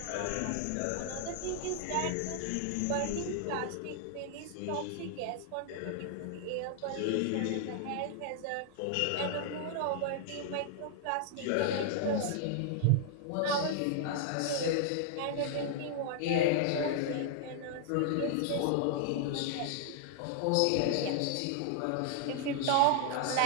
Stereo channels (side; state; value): both; different; correlation 0.00